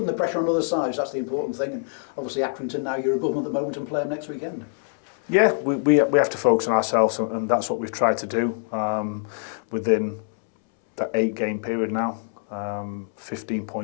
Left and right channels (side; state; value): right; silent; 62 dB below the other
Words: the pressure on other sides. That's the important thing. And obviously Accrington now, you're above them at the moment and play them next weekend. Yeah, we have to focus on ourselves, and that's what we've tried to do within that 8-game period now. 15